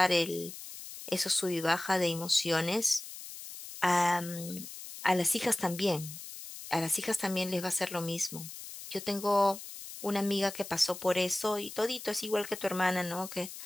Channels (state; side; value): noise; left; hiss, 12 dB below the sound